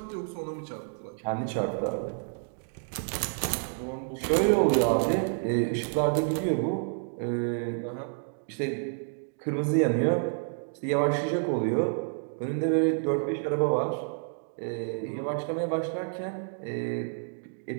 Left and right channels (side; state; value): left; silent; 58 dB below the other